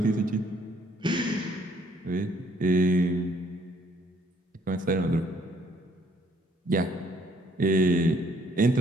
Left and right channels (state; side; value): normal; both; correlation 0.64